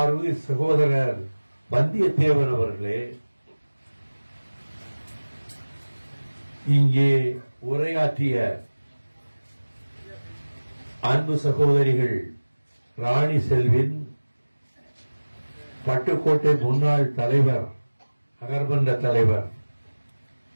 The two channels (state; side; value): inverted; both; correlation -1.00